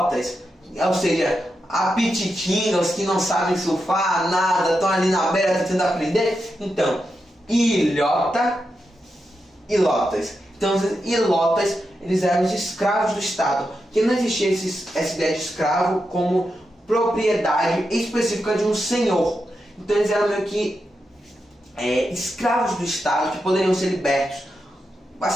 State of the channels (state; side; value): normal; both; correlation 0.87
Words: ou seja, apititinhos que não sabem surfar, nada, estão ali na beira tentando aprender? Então, ilotas. Então, os ilotas, eles eram os escravos do Estado, que não existia essa ideia de escravo como propriedade específica de um senhor. Então, eles eram meio que escravos do Estado que poderiam ser libertos.